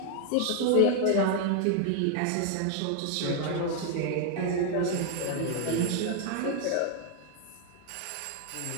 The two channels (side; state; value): both; different; correlation 0.00